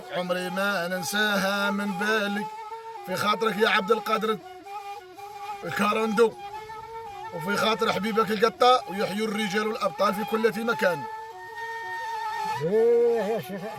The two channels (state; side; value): identical; both; correlation 1.00